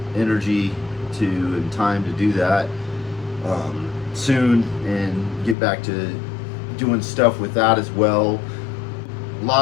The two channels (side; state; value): right; drops out; at 5.6 s